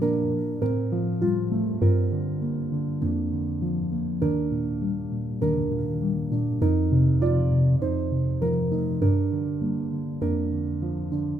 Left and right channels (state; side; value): noise; left; rumble, 26 dB below the sound